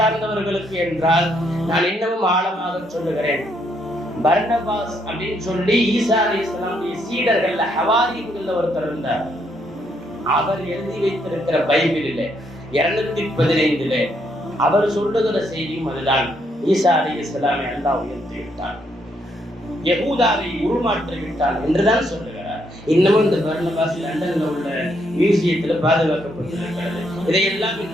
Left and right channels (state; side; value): normal; both; correlation 0.74